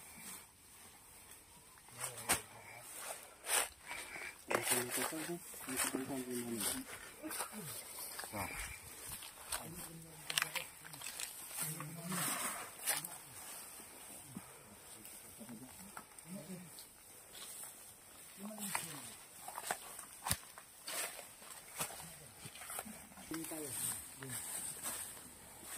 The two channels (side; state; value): both; normal; correlation 0.97